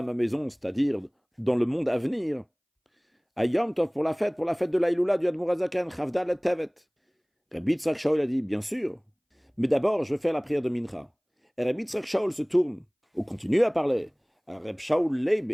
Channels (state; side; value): identical; both; correlation 1.00